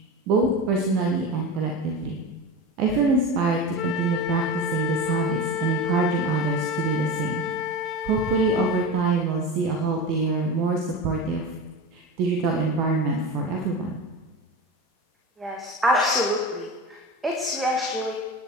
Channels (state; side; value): normal; both; correlation 0.26